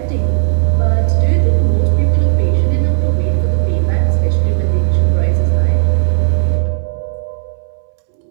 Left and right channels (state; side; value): silent; left; digital silence